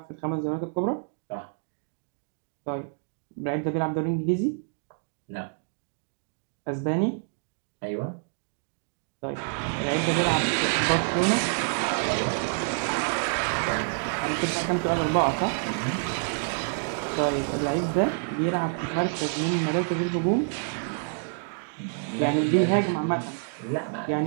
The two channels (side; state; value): left; silent; digital silence